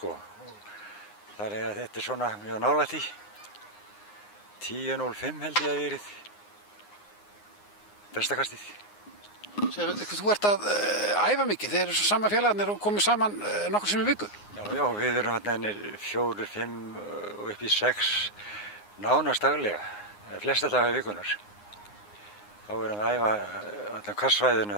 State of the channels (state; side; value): late; right; 9.7 ms